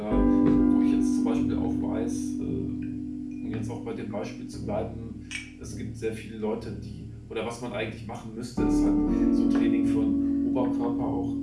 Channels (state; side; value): identical; both; correlation 1.00